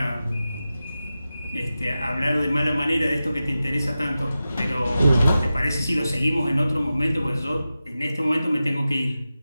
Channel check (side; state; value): both; inverted; correlation -0.93